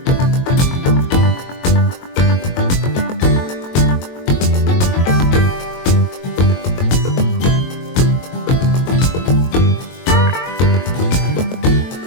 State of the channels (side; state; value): right; late; 22 ms